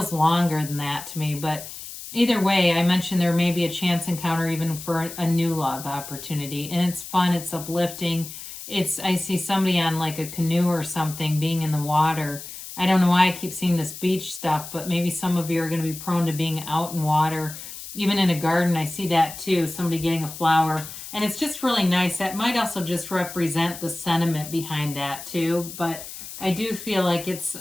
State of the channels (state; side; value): noise; left; hiss, 12 dB below the sound